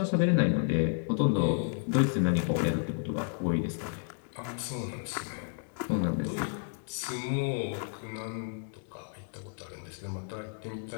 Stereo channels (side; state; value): right; silent; 57 dB below the other